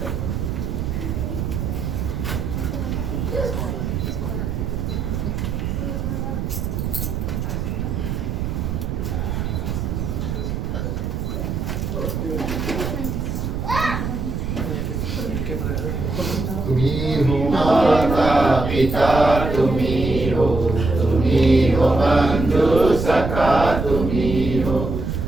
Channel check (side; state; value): right; noise; rumble, 2 dB below the sound